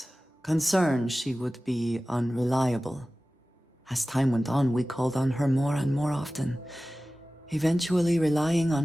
concern she would be unreliable. As time went on, we called on her more and more often, eventually relying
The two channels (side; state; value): both; normal; correlation 0.96